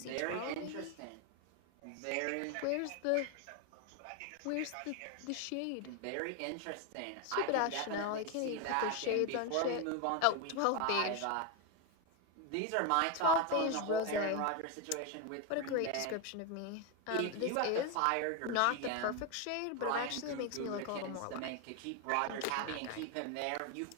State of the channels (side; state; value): both; different; correlation 0.02